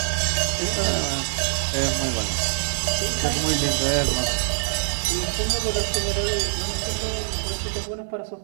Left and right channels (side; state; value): left; silent; 60 dB below the other